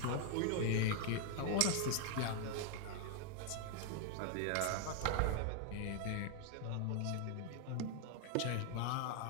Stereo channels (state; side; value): different; both; correlation 0.00